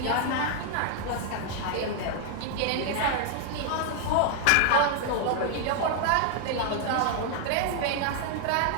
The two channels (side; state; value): both; different; correlation 0.00